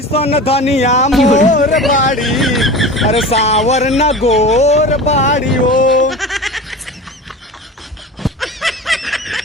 धनिया मोर बाड़ी, अरे सावर न गोर बाड़ी हो।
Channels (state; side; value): normal; both; correlation 0.33